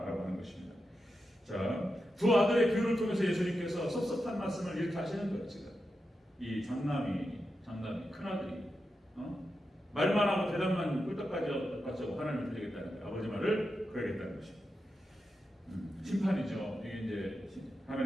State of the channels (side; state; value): both; normal; correlation 0.88